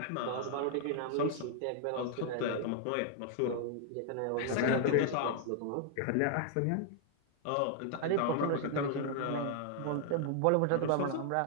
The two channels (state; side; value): different; both; correlation -0.01